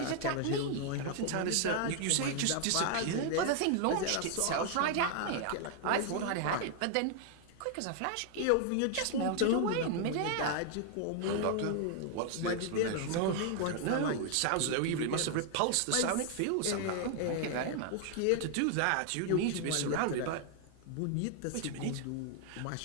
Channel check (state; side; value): different; both; correlation 0.00